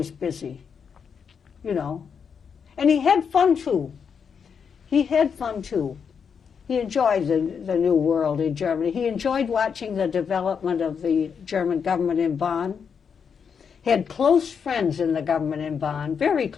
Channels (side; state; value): right; quieter; 6.6 dB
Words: busy, and he had fun too. He enjoyed the new world in Germany. He enjoyed watching the development of the German government in Bonn. He had close friends in the government in Bonn, very